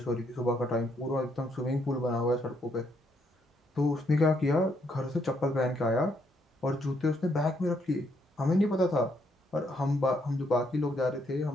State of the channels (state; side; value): normal; both; correlation 0.73